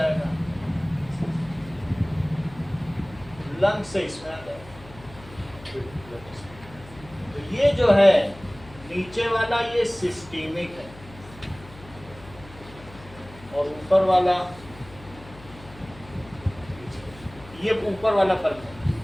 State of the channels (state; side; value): noise; left; hum, 19 dB below the sound